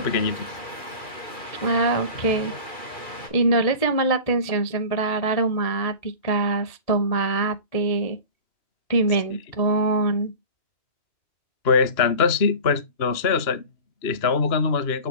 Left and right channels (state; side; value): late; right; 2.4 ms